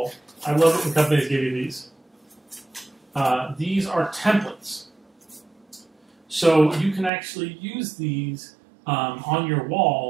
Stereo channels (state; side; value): drops out; left; at 7.1 s